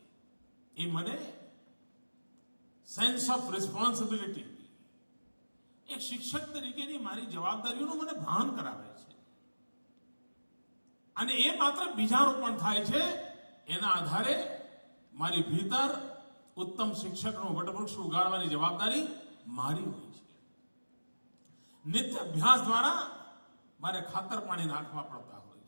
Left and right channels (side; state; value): both; inverted; correlation -1.00